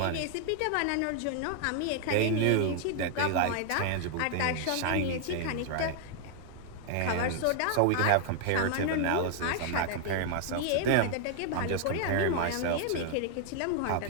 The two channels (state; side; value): different; both; correlation 0.00